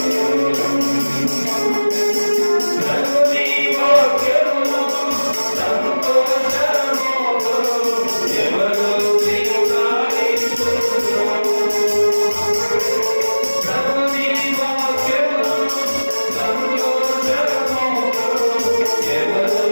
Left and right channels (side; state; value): both; inverted; correlation -1.00